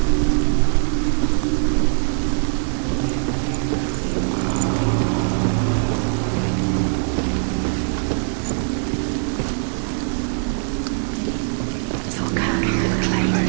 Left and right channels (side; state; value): left; silent; 65 dB below the other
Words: Dillion doesn't know who killed